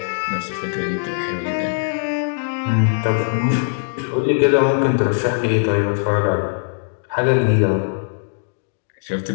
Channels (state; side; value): silent; right; digital silence